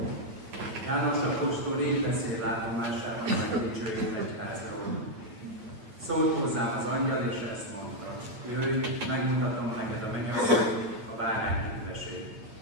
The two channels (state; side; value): late; left; 9.0 ms